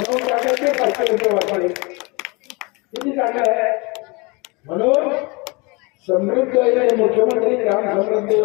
टाकायचे 500 रुपये वापरले. किती चांगलं आहे. म्हणून समृद्ध मुख्यमंत्री ग्राम समृद्धी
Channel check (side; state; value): right; quieter; 27.9 dB